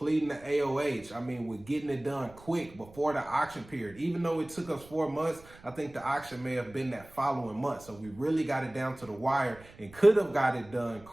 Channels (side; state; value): right; noise; rumble, 22 dB below the sound